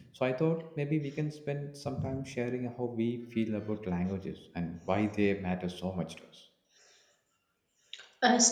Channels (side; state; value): both; identical; correlation 1.00